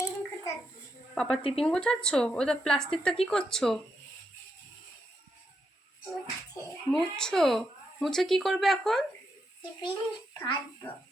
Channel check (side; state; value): both; normal; correlation 0.82